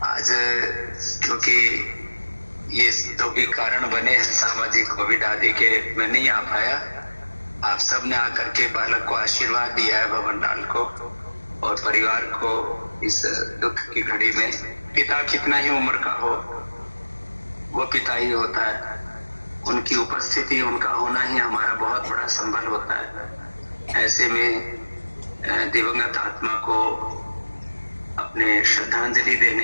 आज क्योंकि ये तो भी कारण बने हैं सामाजिक कोविड आदि के, मैं नहीं आ पाया। आप सब ने आकर के बालक को आशीर्वाद दिया है, भवन लाल को और परिवार को इस दुख की घड़ी में। पिता कितना ही उम्र का हो, वो पिता ही होता है। उनकी उपस्थिति, उनका होना ही हमारा बहुत बड़ा संबल होता है। ऐसे में दिवंगत आत्मा को अपने श्रद्धांजलि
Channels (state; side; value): inverted; both; correlation -1.00